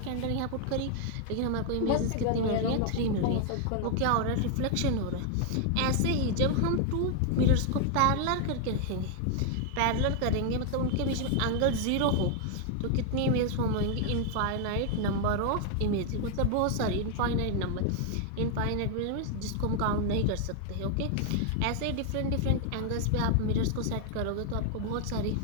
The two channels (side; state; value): both; different; correlation 0.00